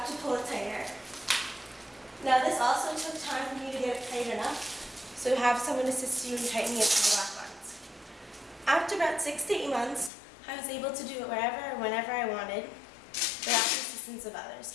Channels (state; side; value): drops out; right; at 10.1 s